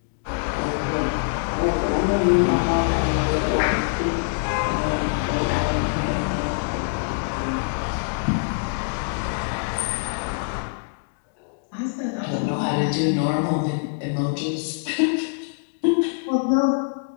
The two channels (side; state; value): right; silent; digital silence